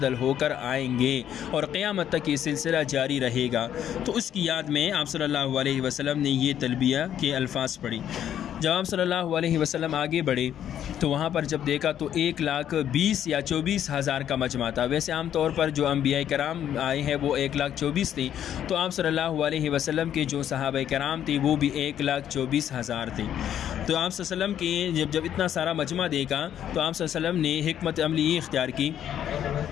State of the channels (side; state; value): right; quieter; 10.2 dB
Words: ہو کر آئیں گے، اور قیامت تک یہ سلسلہ جاری رہے گا۔ تو اس کی یاد میں آپ صلی اللہ علیہ وسلم نے یہ تلبیہ کے الفاظ پڑھی۔ جب آپ صلی اللہ علیہ وسلم آگے بڑھے تو وہاں پر جب دیکھا تو 1,20,000 یا 24,000 کا مجمع تھا۔ ویسے عام طور پر جو انبیاء کرام آئے ہیں وہ 1,24,000 تھے، تو آپ صلی اللہ علیہ وسلم کے جو صحابہ کرام تھے وہ بھی 1,24,000 تھے۔ تو آپ صلی اللہ علیہ وسلم کے جب اتنا سارا مجمع دیکھا تو آپ صلی اللہ علیہ وسلم نے حکمت عملی یہ اختیار کی